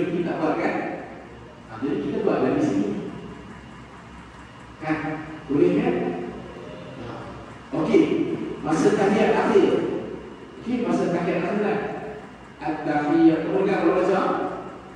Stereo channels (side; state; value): both; identical; correlation 1.00